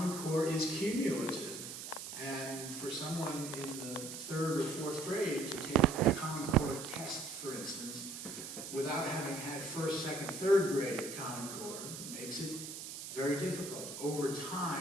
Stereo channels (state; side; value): noise; right; hiss, 9 dB below the sound